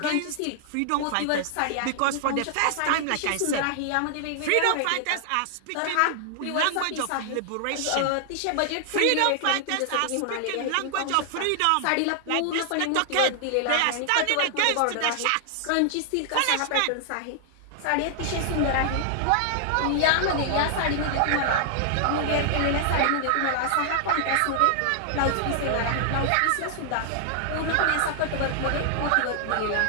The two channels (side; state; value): both; different; correlation 0.00